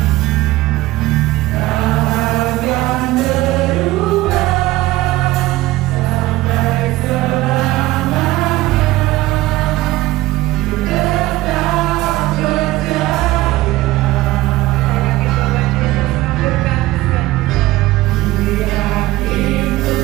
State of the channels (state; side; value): quieter; left; 17.6 dB